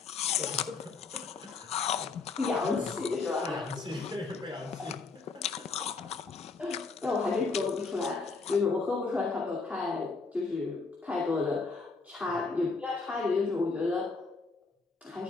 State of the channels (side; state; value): right; quieter; 4.2 dB